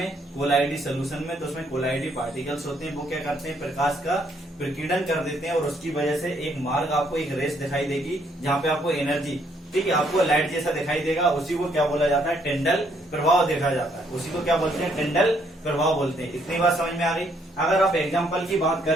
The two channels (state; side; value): normal; both; correlation 0.69